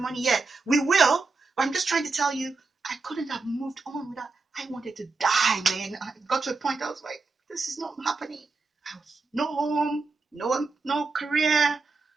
yet. We will, but I'm just trying to tell you, I couldn't have moved on without. I wanted to die, man. I got to a point I was like, this is not happening. I was no home, no career,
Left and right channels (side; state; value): left; quieter; 3.9 dB